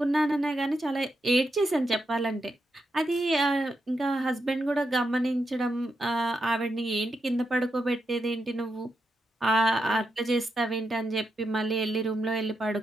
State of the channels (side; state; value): both; normal; correlation 0.84